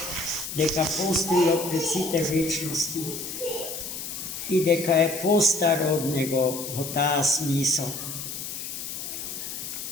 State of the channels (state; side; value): noise; left; hiss, 7 dB below the sound